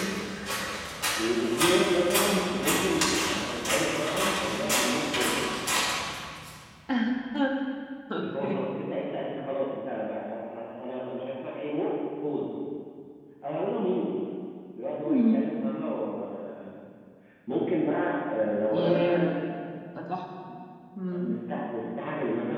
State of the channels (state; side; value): identical; both; correlation 1.00